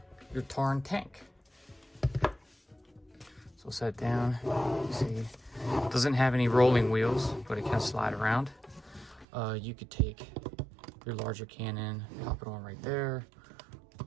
your Tarn tank. So set down, you see, it doesn't have any rolling wheels, but it can slide around. You could take your larger cannon, pop it on right there,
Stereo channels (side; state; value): left; drops out; at 9.2 s